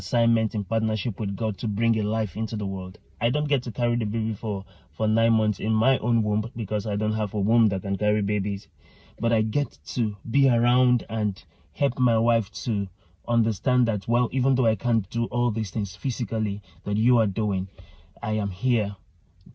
in partnership with God to bring a life into the world. I don't get to carry the baby for 9 months in my own womb because I don't have a womb that can carry babies. But I get to be around and help my wife to understand that, well, even though I can't do all these things physically that you are doing, I am here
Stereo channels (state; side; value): identical; both; correlation 1.00